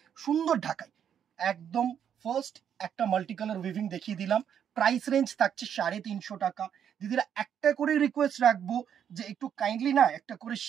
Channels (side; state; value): left; quieter; 8.7 dB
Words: সুন্দর ঢাকায় একদম। ফার্স্ট একটা মাল্টি কালার উইভিং দেখিয়ে দিলাম, প্রাইস রেঞ্জ থাকছে 350 টাকা। দিদিরা একটা করে রিকোয়েস্ট রাখবো যে একটু কাইন্ডলি না একটা করে